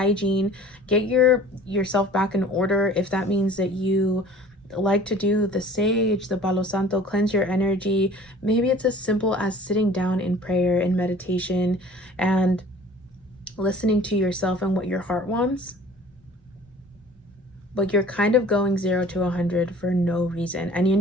Get yourself back in order. If that means that you like to do the sage, the Palo Santo, cleanse your energy. Maybe it's as simple as sitting down in prayer and meditation and listening to yourself and what your heart wants. But you're kind of going 0 to 100 for no reason. And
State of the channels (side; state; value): both; normal; correlation 0.48